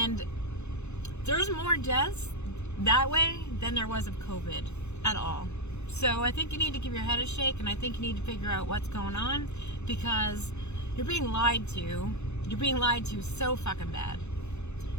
there's more deaths that way than there was of COVID at all. So I think you need to give your head a shake, and I think you need to figure out what's going on, because you're being lied to. You're being lied to so fucking bad.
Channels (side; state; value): right; late; 0.81 ms